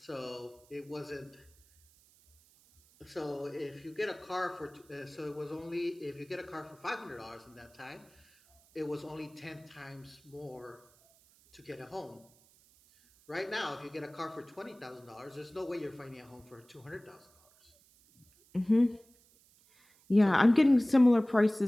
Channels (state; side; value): noise; right; hiss, 29 dB below the sound